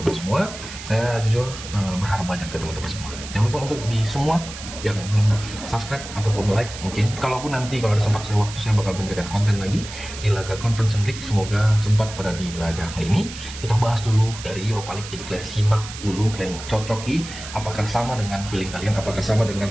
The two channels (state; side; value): noise; right; hiss, 12 dB below the sound